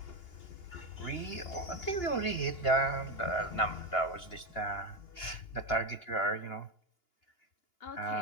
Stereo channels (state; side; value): late; right; 2.9 ms